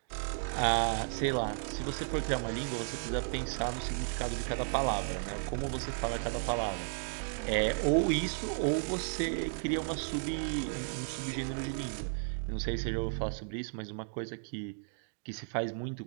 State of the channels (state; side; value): silent; left; digital silence